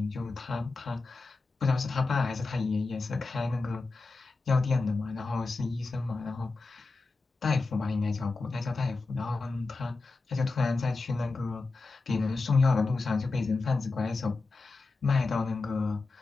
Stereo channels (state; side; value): quieter; right; 3.8 dB